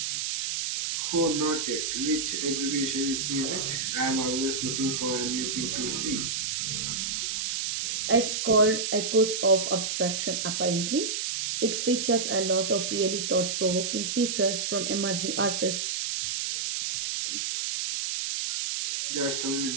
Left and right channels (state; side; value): noise; right; hiss, 1 dB below the sound